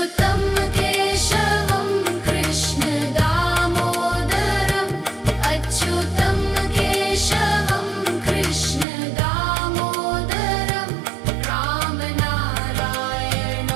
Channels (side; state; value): left; drops out; at 8.8 s